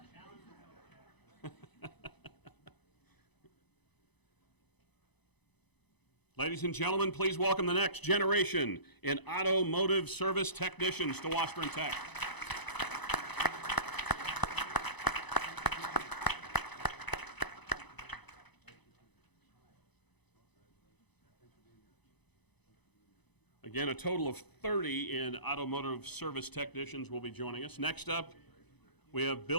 Ladies and gentlemen, please welcome the next generation in automotive service technicians to Washburn Tech. Again, a total of 30 in automotive service technicians will be joining us. Next up, we have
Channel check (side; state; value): right; late; 0.99 ms